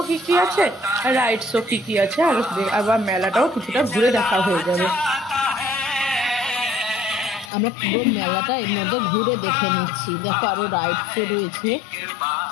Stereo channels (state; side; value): drops out; right; at 7.5 s